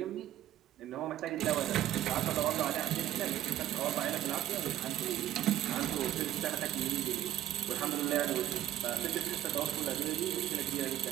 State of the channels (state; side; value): quieter; left; 12.7 dB